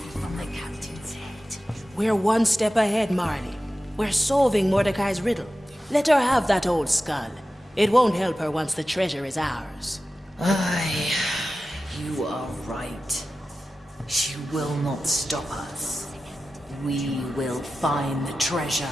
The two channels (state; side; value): normal; both; correlation 0.94